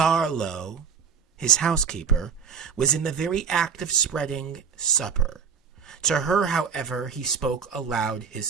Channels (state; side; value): quieter; left; 6.3 dB